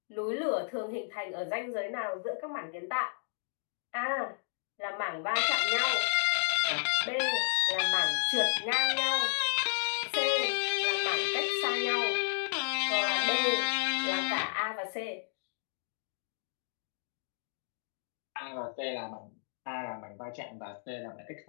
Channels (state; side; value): silent; right; digital silence